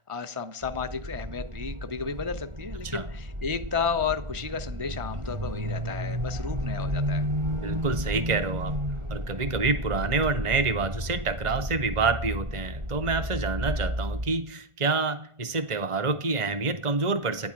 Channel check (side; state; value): left; late; 1.5 ms